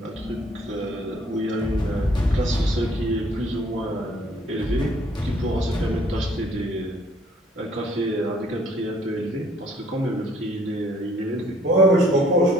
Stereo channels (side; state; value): both; normal; correlation 0.61